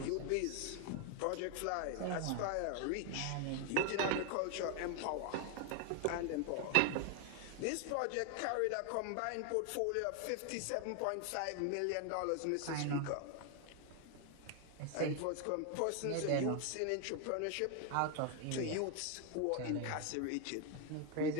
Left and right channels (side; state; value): both; different; correlation 0.01